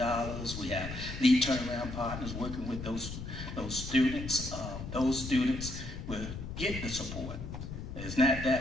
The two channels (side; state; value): left; noise; rumble, 8 dB below the sound